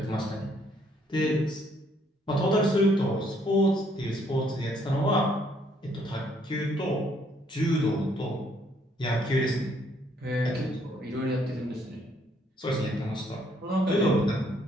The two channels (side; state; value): both; normal; correlation 0.67